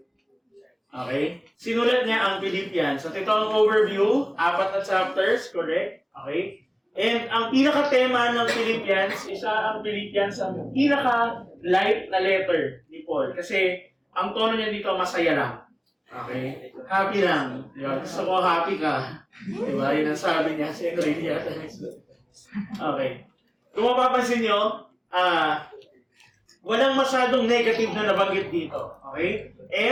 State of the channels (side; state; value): both; identical; correlation 1.00